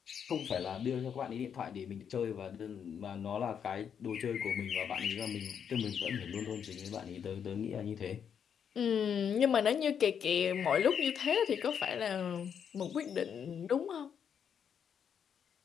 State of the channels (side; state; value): right; quieter; 7.8 dB